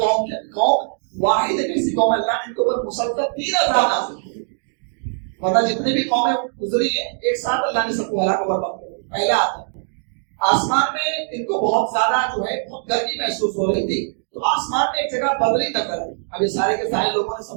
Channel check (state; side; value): silent; left; digital silence